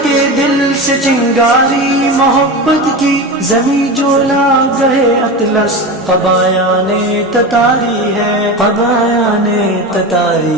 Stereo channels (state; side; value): normal; both; correlation 0.24